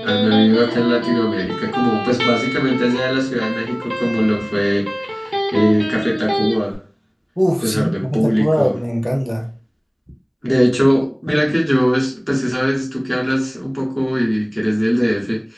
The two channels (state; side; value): identical; both; correlation 1.00